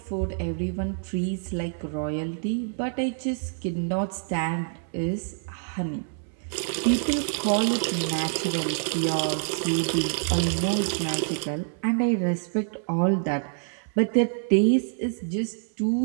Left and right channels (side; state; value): left; silent; 60 dB below the other